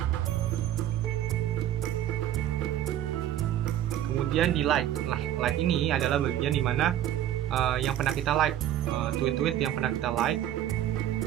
kemudian di like. Nah, like ini adalah bagian dimana yang pernah kita like, tweet-tweet yang pernah kita like.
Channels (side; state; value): left; quieter; 11.8 dB